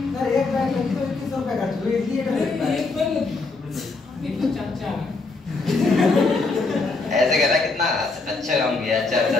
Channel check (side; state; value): right; quieter; 3.8 dB